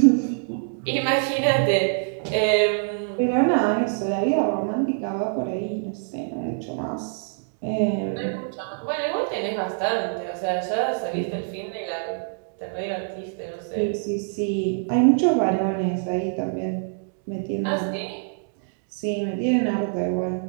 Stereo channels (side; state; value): left; silent; digital silence